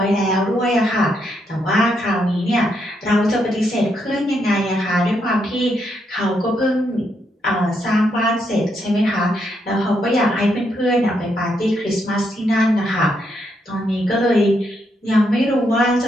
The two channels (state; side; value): normal; both; correlation 0.78